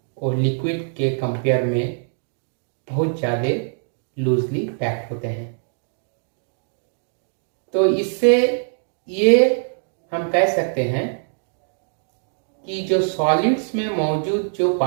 वो लिक्विड के कंपेयर में बहुत ज़्यादा लूजली पैक्ड होते हैं। तो इससे ये हम कह सकते हैं कि जो सॉलिड्स में मौजूद जो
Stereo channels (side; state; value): left; silent; digital silence